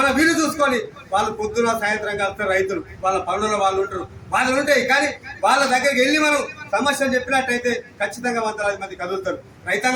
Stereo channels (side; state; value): both; identical; correlation 1.00